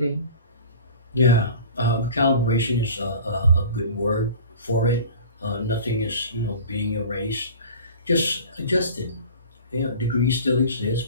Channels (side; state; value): both; inverted; correlation -0.40